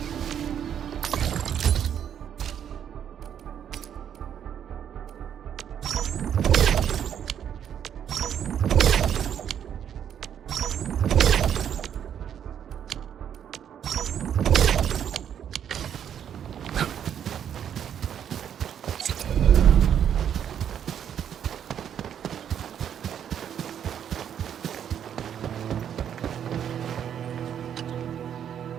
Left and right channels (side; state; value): left; quieter; 9.1 dB